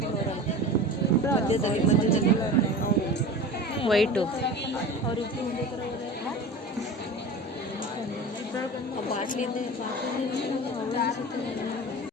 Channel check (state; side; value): normal; both; correlation 0.34